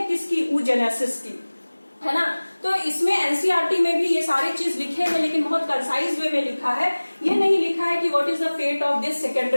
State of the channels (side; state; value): both; inverted; correlation -1.00